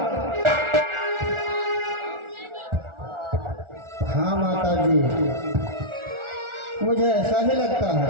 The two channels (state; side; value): late; left; 1.4 ms